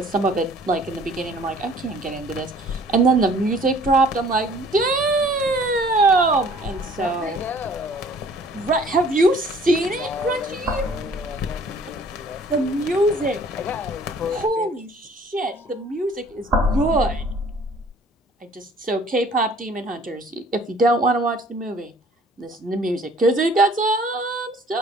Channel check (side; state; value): both; normal; correlation 0.54